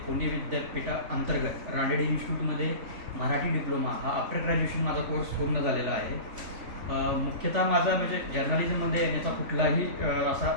पुणे विद्यापीठाअंतर्गत रानडे इन्स्टिट्यूटमध्ये मराठी डिप्लोमा हा आफ्टर ग्रॅज्युएशन माझा कोर्स पूर्ण झालेला आहे. मुख्यतः माझा म्हणजे जर्नलिझममध्ये येण्याचा कुठलाही असा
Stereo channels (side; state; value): left; late; 3.5 ms